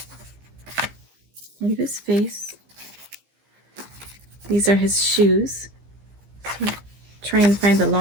Part of his face. These are his shoes. So try and find the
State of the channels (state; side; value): late; left; 15 ms